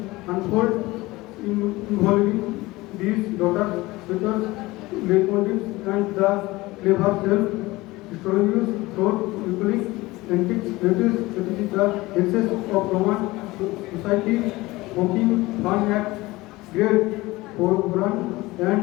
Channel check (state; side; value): quieter; right; 20.2 dB